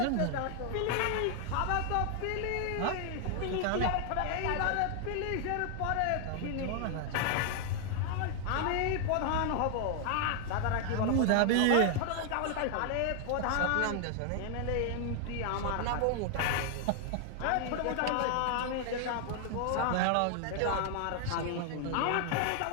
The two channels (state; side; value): different; both; correlation 0.00